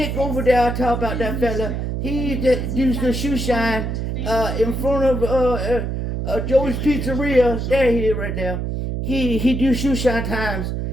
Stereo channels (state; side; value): noise; right; hum, 2 dB below the sound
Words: over there, I talk about that fella. He used the shoe shine in front of Joey's Pizzeria. There he is right there. He do shoe shine times,